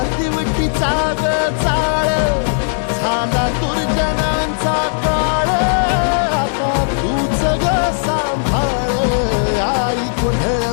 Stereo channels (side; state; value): right; silent; digital silence